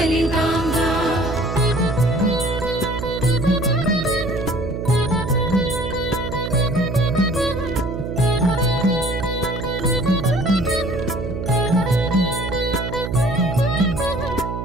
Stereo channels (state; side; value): noise; right; hum, 5 dB below the sound